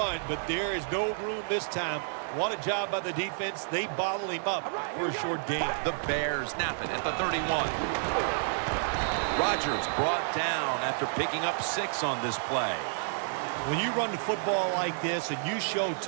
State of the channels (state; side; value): silent; left; 58 dB below the other